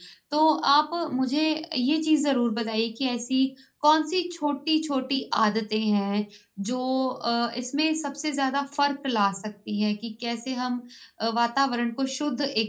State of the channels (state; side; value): identical; both; correlation 1.00